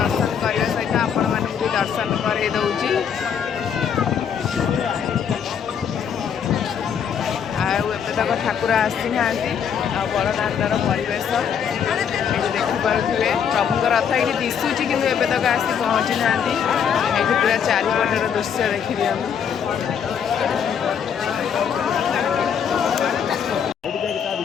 करने सहित आपण मान भी दर्शन कर दौची तक ठाकुर आसी ना बड़दाण्डर परिवेश देखिपे प्रभुंर रथ ये दिशुची कि एवं तक आसी पहुँची ना ये पूरा चारिपटर दृश्य देखिए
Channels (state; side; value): quieter; right; 7.8 dB